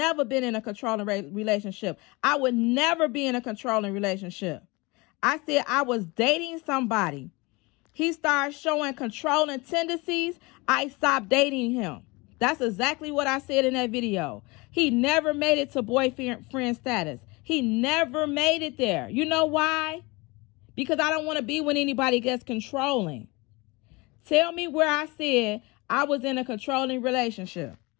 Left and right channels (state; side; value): quieter; right; 25.0 dB